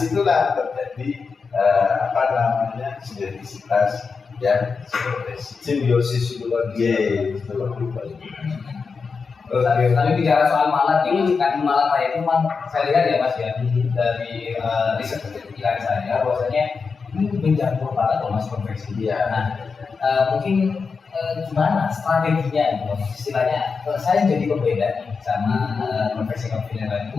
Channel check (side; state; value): right; quieter; 5.1 dB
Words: terjadi sinergisitas yang simbiosis itu lagi. Tapi bicara soal Malang ini, kan Malang saya itu saya lihat ya Mas ya, dari riset kepikiran saya bahwasanya ini menjangkau banget loh Mas konveksi dia. Nah, mungkin gimana strateginya gitu, istilahnya saya jadi pembeda nih sama konveksi yang lain.